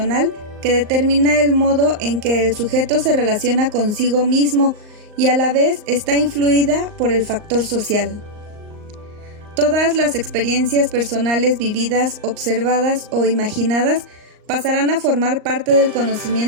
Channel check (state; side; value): late; left; 38 ms